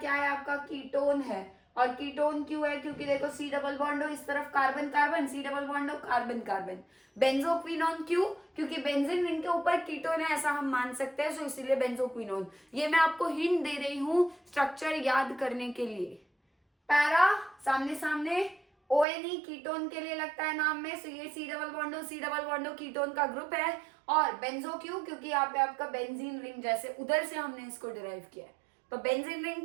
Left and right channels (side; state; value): left; drops out; at 19.1 s